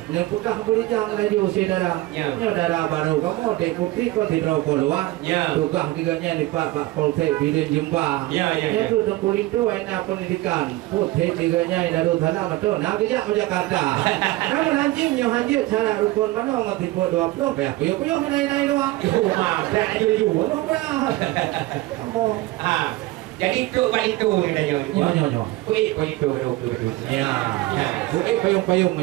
Yang pegah yang laju saudara, saudara baru kamu dek putri kau tidak keluar, tukah tiganya di pak polsek bilin jumpa, itu dengkul itu enak pendidikan, putri tiganya dari sana betul, nak kerja ke Jakarta, namun anjing yang hancur cara rukun mana orang tipu 20 ya, puyuh naik doang, mah, berapa juga, kamu, jadi tu balik tu ni dah nyo. Kuih itu betul. Ya. Kuih payung.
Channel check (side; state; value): left; quieter; 18.6 dB